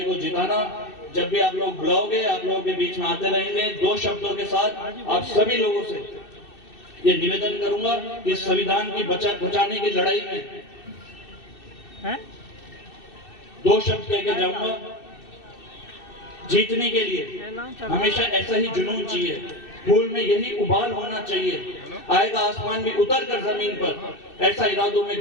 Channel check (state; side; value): late; right; 2.6 ms